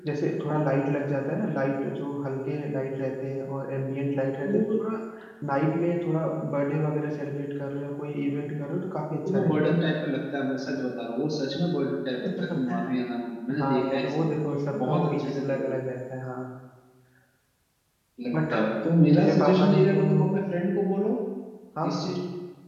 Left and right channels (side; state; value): both; identical; correlation 1.00